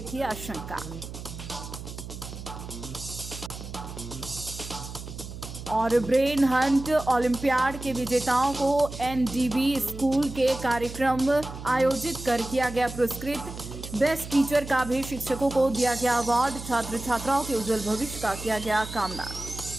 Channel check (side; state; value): right; noise; hum, 11 dB below the sound